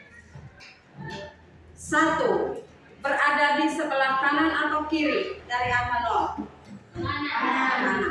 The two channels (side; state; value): both; identical; correlation 1.00